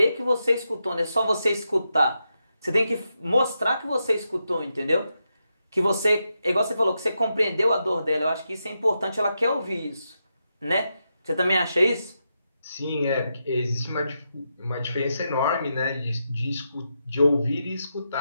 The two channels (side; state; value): both; inverted; correlation -0.85